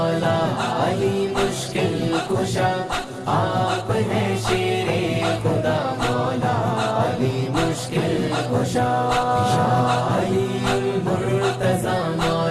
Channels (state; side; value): identical; both; correlation 1.00